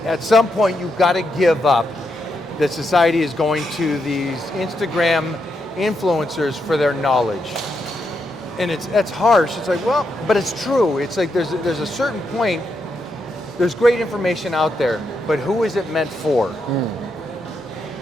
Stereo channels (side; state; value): both; normal; correlation 0.82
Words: at some point, you've got to give up that society is going to these Instagram influencers for their knowledge. And that's harsh. It's like, well, but it's true. It's like there's a certain point there's great information out there, but who is it meant for?